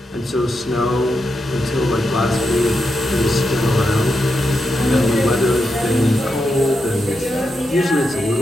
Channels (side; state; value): both; normal; correlation 0.85